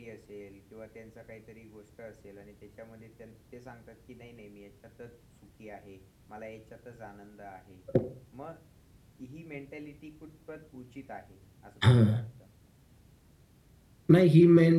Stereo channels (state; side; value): identical; both; correlation 1.00